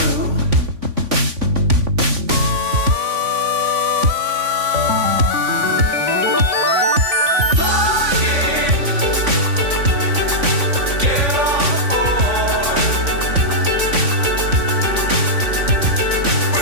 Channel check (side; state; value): left; late; 3.5 ms